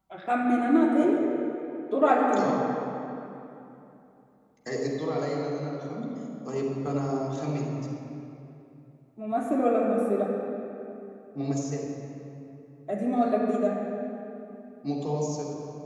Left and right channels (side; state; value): both; identical; correlation 1.00